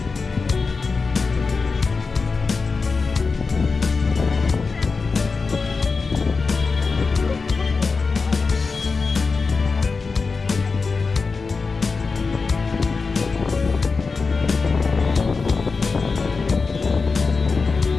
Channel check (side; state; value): right; quieter; 4.5 dB